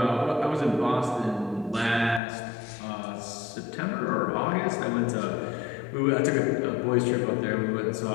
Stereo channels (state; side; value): drops out; right; at 2.2 s